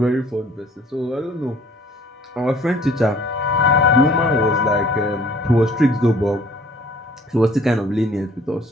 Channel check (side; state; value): both; normal; correlation 0.55